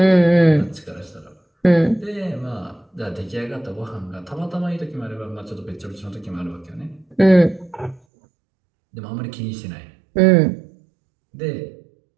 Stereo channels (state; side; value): drops out; left; at 8.0 s